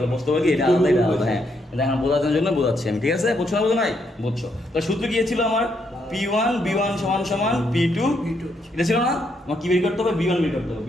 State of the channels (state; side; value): normal; both; correlation 0.76